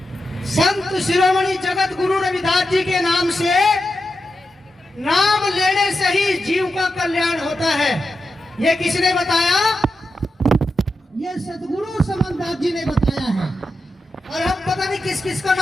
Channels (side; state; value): both; normal; correlation 0.89